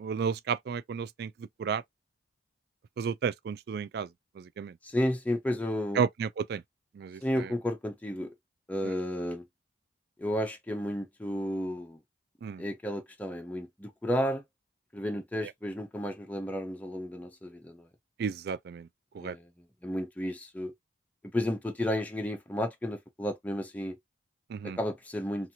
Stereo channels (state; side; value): normal; both; correlation 0.65